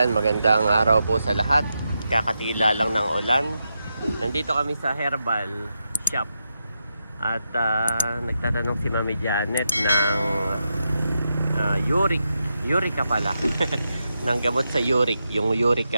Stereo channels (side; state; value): both; inverted; correlation -0.86